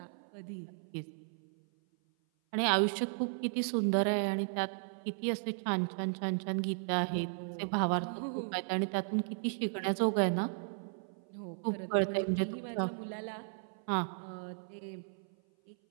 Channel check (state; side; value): silent; left; 54 dB below the other